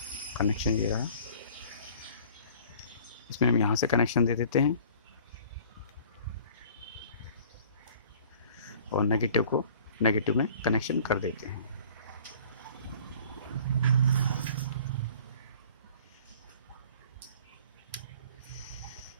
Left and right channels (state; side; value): inverted; both; correlation -0.49